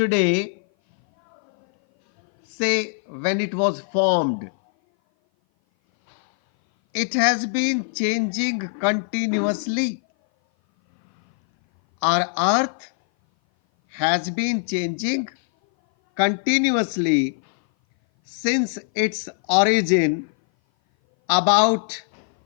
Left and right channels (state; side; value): silent; right; 58 dB below the other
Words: say when it was formed. It has been changing continuously. Our earth has been changing continuously since its origin about